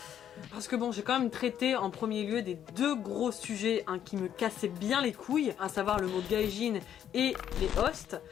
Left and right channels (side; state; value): right; quieter; 9.8 dB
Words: Parce que bon, j'ai quand même traité en premier lieu des 2 gros sujets hein, qui me cassaient bien les couilles, à savoir le mot gaijin et les hosts.